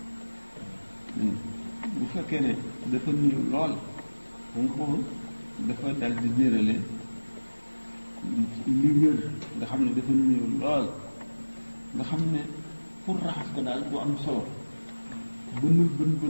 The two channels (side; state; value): both; inverted; correlation -1.00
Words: bu fekkee ne dafa néew lool xam nga foofu dafa dal di nérale li wér nga xam ne dafa néew lool nga xam ne pour raxas ko daal bu am solo bën bu